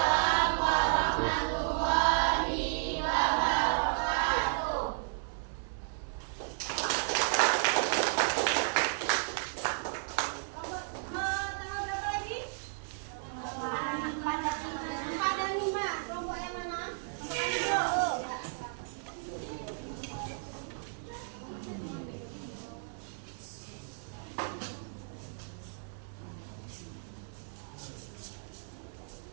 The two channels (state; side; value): silent; left; 55 dB below the other